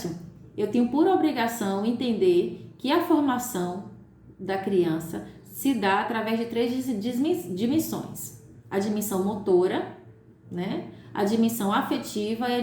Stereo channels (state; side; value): identical; both; correlation 1.00